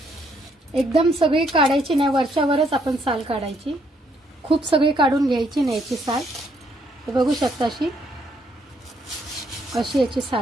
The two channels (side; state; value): both; normal; correlation 0.71